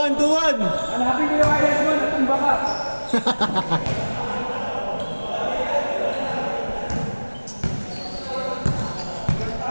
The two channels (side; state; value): both; inverted; correlation -1.00